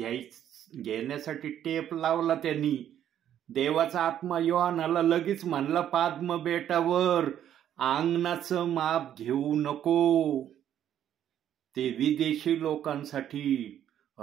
घेण्यासाठी टेप लावला त्यांनी. देवाचा आत्मा योहानाला लगेच म्हणला, पाद्म बेटावर अंगणाचं माप घेऊ नको, ते विदेशी लोकांसाठी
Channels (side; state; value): left; quieter; 10.5 dB